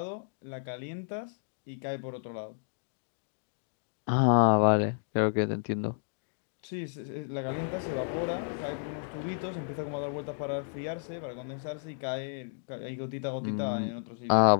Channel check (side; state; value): right; silent; digital silence